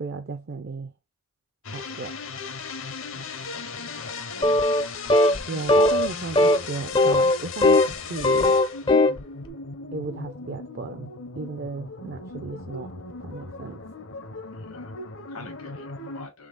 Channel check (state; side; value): normal; both; correlation 0.43